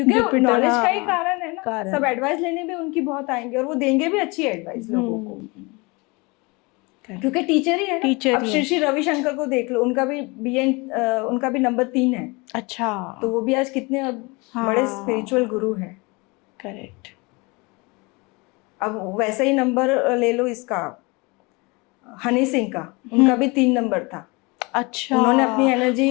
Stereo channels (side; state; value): right; quieter; 26.8 dB